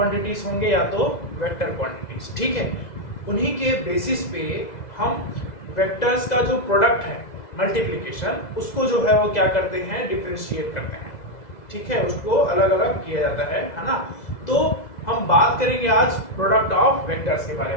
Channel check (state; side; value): late; right; 2.0 ms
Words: होंगे या तो वेक्टर क्वांटिटीज। ठीक है, उन्हीं के बेसिस पे हम वेक्टर्स का जो प्रोडक्ट है मल्टीप्लिकेशन, उसको जो है वो क्या करते हैं, डिफरेंशिएट करते हैं। ठीक है, उसको अलग अलग किया जाता है ना। तो हम बात करेंगे आज प्रोडक्ट ऑफ वेक्टर्स के बारे